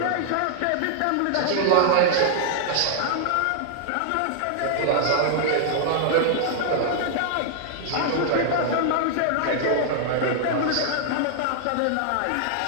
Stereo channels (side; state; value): both; different; correlation 0.00